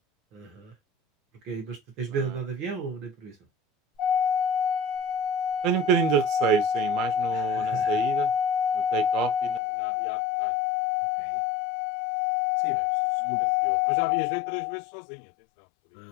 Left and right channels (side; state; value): right; drops out; at 9.6 s